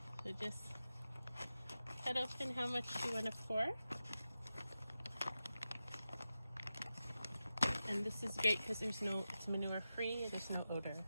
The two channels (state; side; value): inverted; both; correlation -0.92